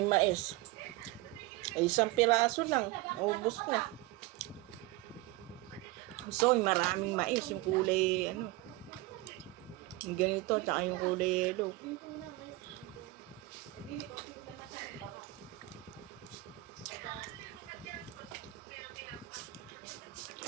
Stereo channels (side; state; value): left; quieter; 19.3 dB